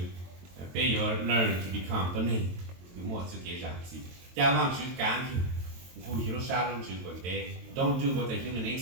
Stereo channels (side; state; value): left; late; 22 ms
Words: to learn to become the name. Don't do what the human